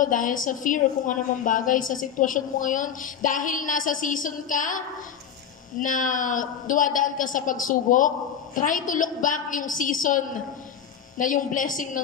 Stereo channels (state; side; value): quieter; right; 8.2 dB